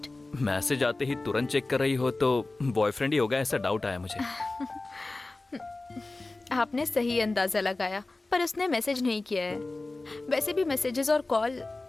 मैसेज आते ही तुरंत चेक कर रही हो तो बॉयफ्रेंड ही होगा, ऐसा डाउट आया मुझे। आपने सही अंदाजा लगाया, पर उसने मैसेज नहीं किया है। वैसे भी मैसेजेस और कॉल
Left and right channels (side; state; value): right; quieter; 3.2 dB